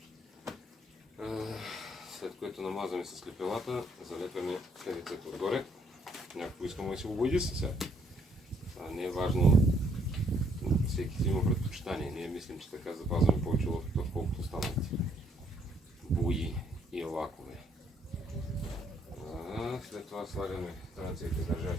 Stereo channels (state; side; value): normal; both; correlation 0.68